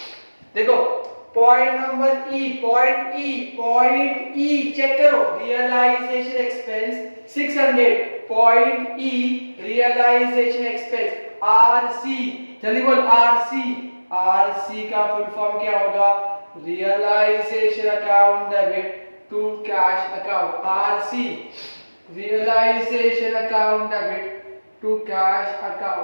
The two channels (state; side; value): inverted; both; correlation -1.00